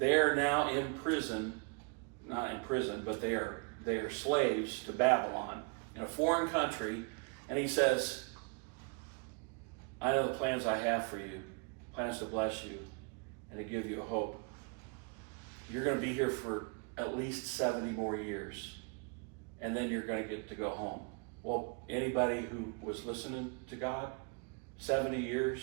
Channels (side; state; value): left; quieter; 34.9 dB